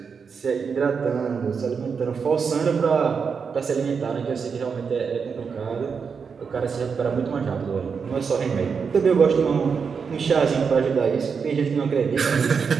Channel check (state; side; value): quieter; left; 5.9 dB